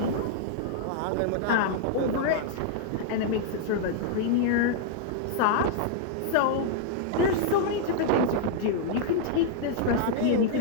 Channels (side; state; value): both; different; correlation -0.01